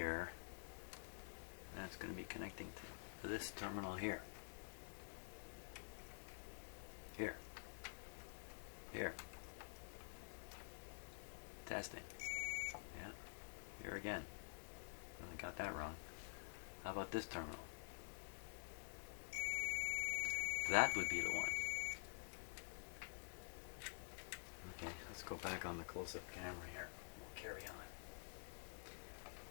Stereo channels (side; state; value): right; silent; digital silence